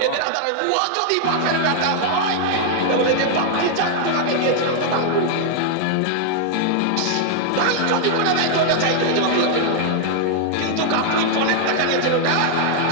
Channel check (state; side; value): different; both; correlation 0.00